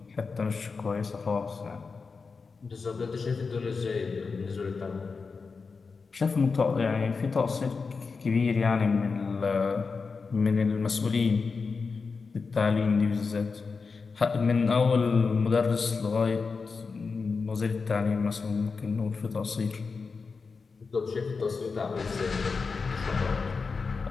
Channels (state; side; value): quieter; right; 4.7 dB